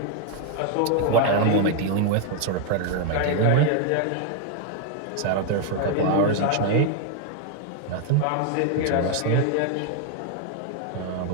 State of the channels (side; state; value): both; different; correlation 0.01